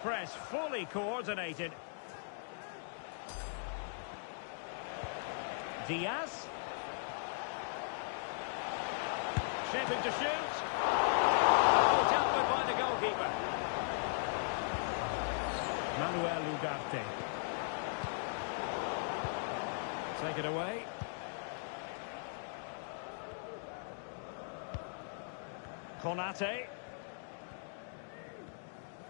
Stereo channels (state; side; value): silent; right; digital silence